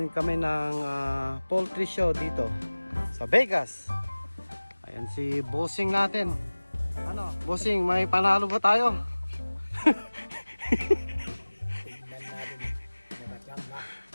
kami ng poultry show dito sa Vegas. Ayan si Bossing natin. Ano? Bossing, may panalo ba tayo?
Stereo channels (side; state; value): both; inverted; correlation -1.00